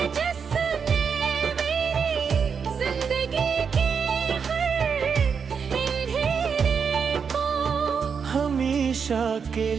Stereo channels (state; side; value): quieter; left; 6.3 dB